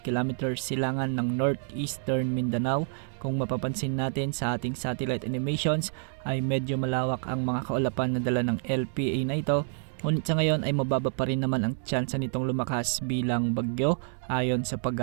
km silangan ng northeastern Mindanao. Kung mapapansin natin sa ating satellite animations ay medyo malawak ang mga kaulapan na dala ng LPA na ito. Ngunit sa ngayon ay mababa pa rin naman ang tsansa nitong lumakas bilang bagyo ayon sa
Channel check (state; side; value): silent; left; digital silence